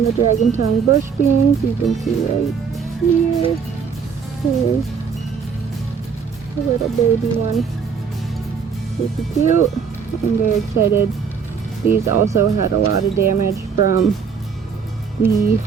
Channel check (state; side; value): quieter; left; 6.3 dB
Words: dragon tongue bush beans. You can see right here. Here's a little baby one. Super cute. I'm very excited. These also had a lot of damage from the